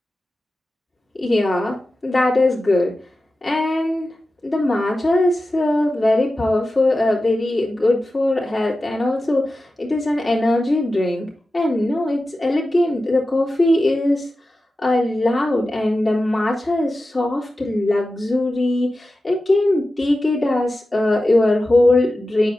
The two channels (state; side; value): normal; both; correlation 0.93